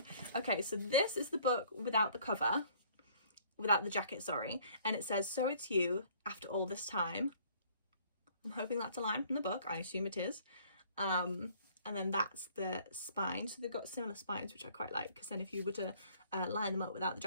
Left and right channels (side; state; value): both; inverted; correlation -0.58